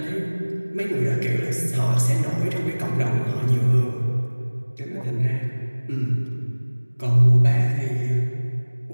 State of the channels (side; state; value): both; inverted; correlation -1.00